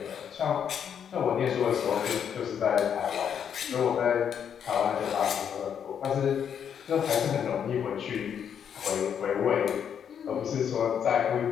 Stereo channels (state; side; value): quieter; right; 8.2 dB